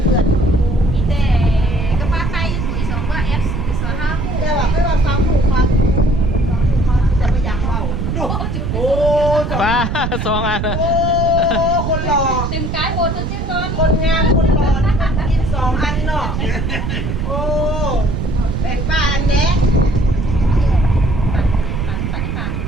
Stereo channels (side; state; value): right; noise; rumble, 2 dB below the sound